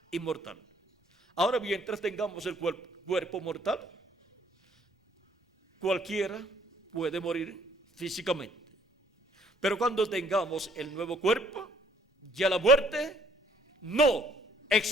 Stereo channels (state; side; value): normal; both; correlation 0.62